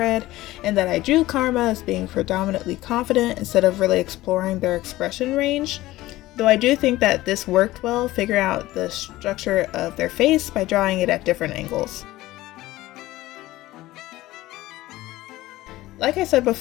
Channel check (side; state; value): right; quieter; 17.1 dB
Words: and that I drew Karma as being predominantly confident instead of really exploring their expression range. Though I do think that this worked well, figuring out the structure of their face by drawing it at different angles. Like I said